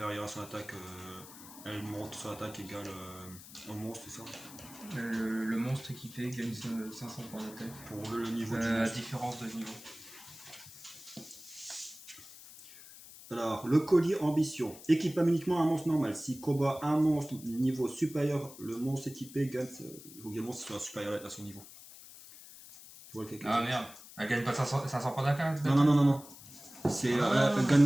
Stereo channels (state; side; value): noise; left; hiss, 17 dB below the sound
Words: à son attaque, elle monte son attaque égale au monstre, c'est ça? Le monstre équipé gagne 500 points d'attaque. Pour le niveau du À monstre. différence de niveau. Alors, le collier ambition. Équipe uniquement un monstre normal. Si combat un monstre niveau supérieur, le monstre équipé gagne. Il faut que le monstre soit supérieur à son niveau. Tu vois quelqu'un? Ah merde, elle gagne pas 500 points d'attaque? Non. C'est, elle